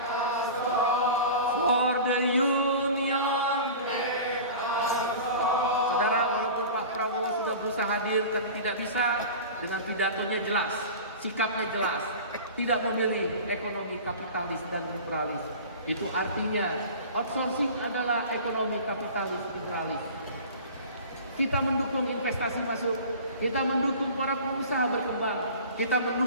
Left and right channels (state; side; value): inverted; both; correlation -0.37